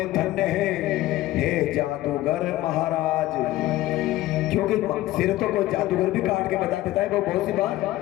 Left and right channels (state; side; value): quieter; right; 16.2 dB